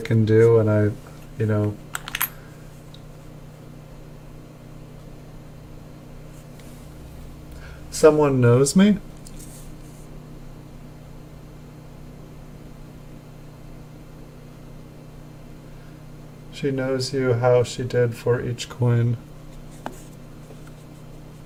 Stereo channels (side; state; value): both; identical; correlation 1.00